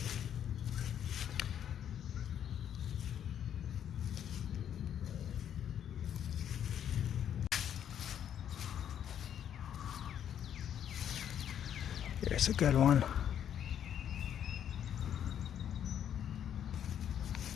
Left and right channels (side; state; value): right; quieter; 9.5 dB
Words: Here's a good one.